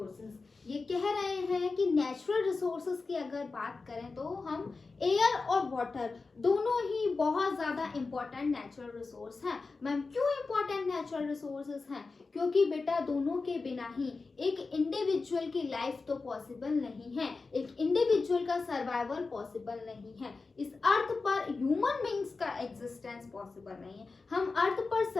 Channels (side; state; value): right; quieter; 4.1 dB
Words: ये कह रहे हैं कि नेचुरल रिसोर्सेज की अगर बात करें तो हम एयर और वाटर दोनों ही बहुत ज्यादा इम्पोर्टेंट नेचुरल रिसोर्स हैं। मैम क्यों इम्पोर्टेंट नेचुरल रिसोर्सेज हैं? क्योंकि बेटा दोनों के बिना ही एक इंडिविजुअल की लाइफ तो पॉसिबल नहीं है, एक इंडिविजुअल का सर्वाइवल पॉसिबल नहीं है, इस अर्थ पर ह्यूमन बींग्स का एग्जिस्टेंस पॉसिबल नहीं है। हम अर्थ पर